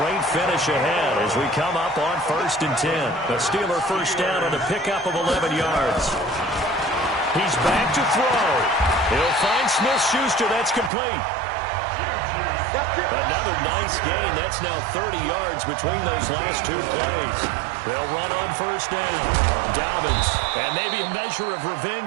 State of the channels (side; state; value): left; drops out; at 10.9 s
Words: finish ahead as we come up on 1st and 10. A Steeler first down on the pickup of 11 yards. He's back to throw. He'll find Smith-Schuster. That's complete. Another nice gain. That's now 30 yards between those last 2 plays. They'll run on first down. Dobbins, and maybe a measure of